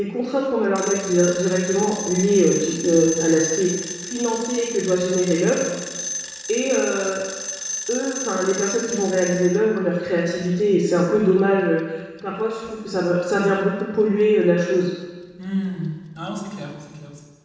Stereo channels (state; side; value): identical; both; correlation 1.00